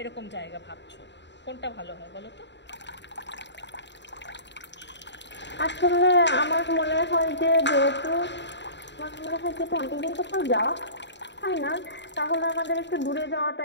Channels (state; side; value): late; right; 0.52 ms